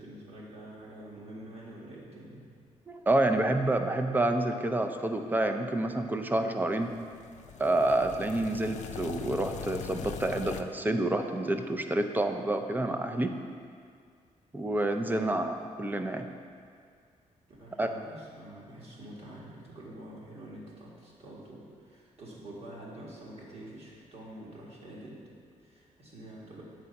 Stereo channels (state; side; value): normal; both; correlation 0.81